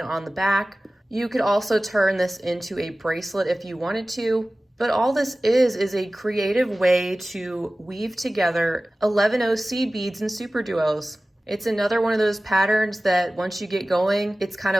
the back. You could also turn this into a bracelet if you wanted to, but all this is a creative way to weave together 11/0 seed beads and super duos. It's another one of those patterns that once you get going, it's kind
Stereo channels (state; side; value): normal; both; correlation 0.97